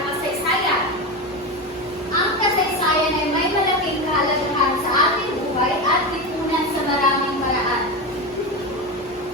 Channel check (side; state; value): both; normal; correlation 0.18